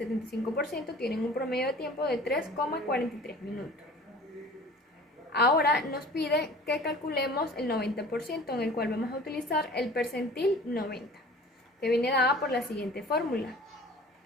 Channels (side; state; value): both; normal; correlation 0.44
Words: tienen un promedio de tiempo de 3,43 minutos. Ahora nos pide que calculemos el 90%, en el cual vamos a utilizar el percentil 90, que viene dada por la siguiente fórmula,